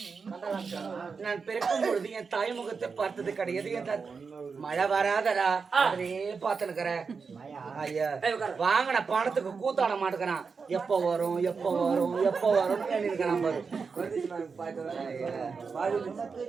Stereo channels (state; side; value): quieter; left; 5.2 dB